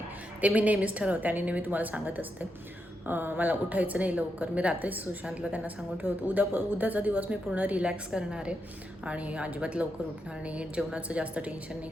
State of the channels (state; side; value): normal; both; correlation 0.84